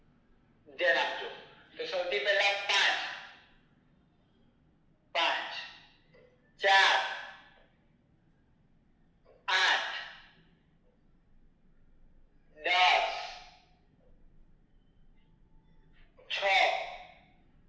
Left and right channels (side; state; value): both; identical; correlation 1.00